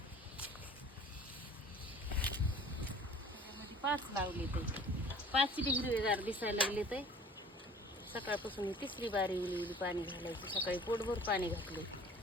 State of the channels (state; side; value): normal; both; correlation 0.48